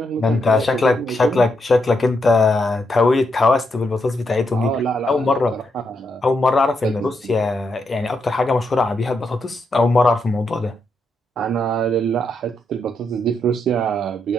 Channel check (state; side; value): normal; both; correlation 0.81